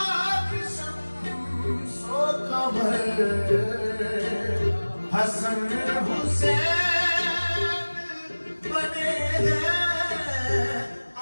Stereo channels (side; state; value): both; inverted; correlation -1.00